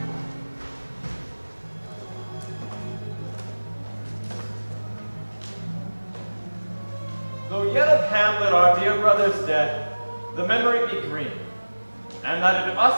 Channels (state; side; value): inverted; both; correlation -1.00